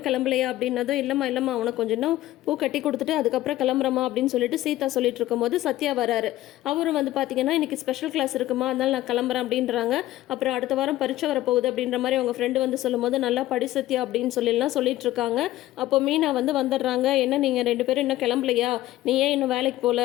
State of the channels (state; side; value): quieter; right; 15.4 dB